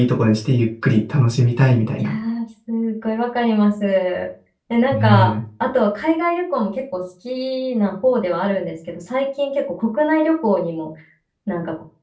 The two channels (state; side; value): identical; both; correlation 1.00